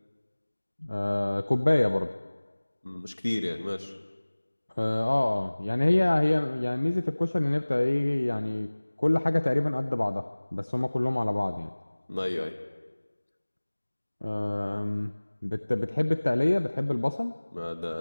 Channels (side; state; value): both; inverted; correlation -1.00